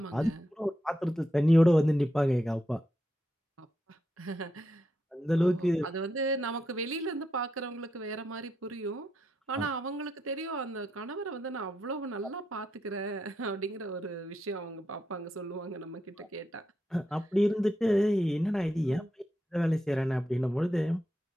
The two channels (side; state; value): both; normal; correlation 0.83